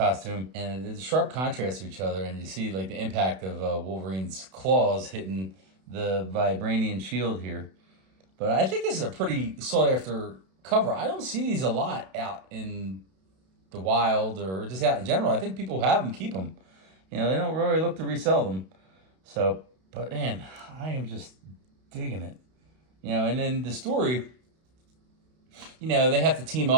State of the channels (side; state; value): left; late; 32 ms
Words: And there's a sharp contrast to each other, and you see like the impact of Wolverine's claws hitting the vibranium shield here. But I think this is a pretty sought-after cover. I don't see these a lot out in the wild or just out in general. I think people have them, keep them. They don't really look to resell them. So, but man, I am just digging it. And then the story, they have to team